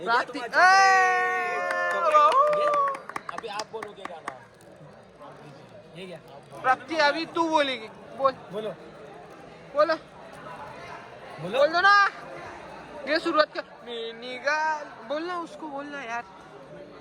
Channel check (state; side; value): identical; both; correlation 1.00